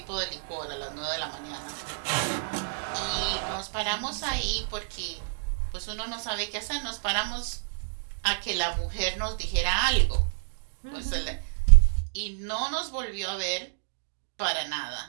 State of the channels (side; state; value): left; silent; digital silence